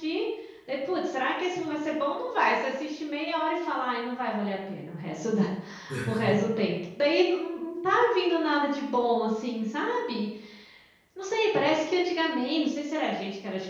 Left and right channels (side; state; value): both; identical; correlation 1.00